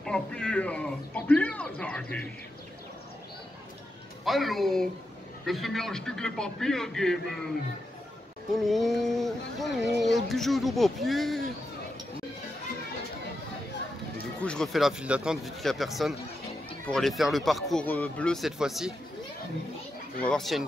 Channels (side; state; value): both; normal; correlation 0.87